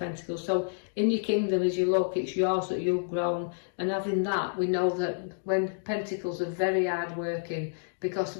So in your kingdom, as you look, it's yours that you've grown, and having that, we know that when Pentacles are very hard working, because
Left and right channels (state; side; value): silent; right; digital silence